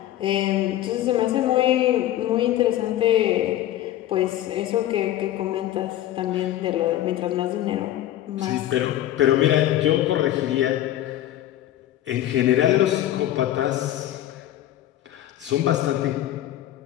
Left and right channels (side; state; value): right; quieter; 13.2 dB